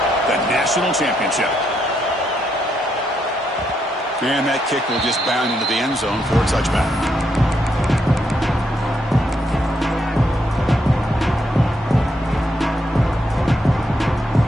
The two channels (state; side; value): normal; both; correlation 0.78